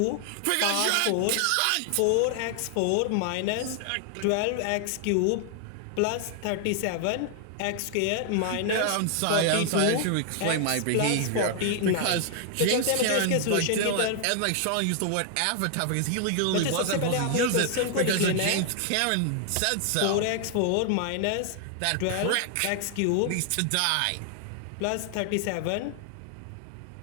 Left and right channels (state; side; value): different; both; correlation 0.00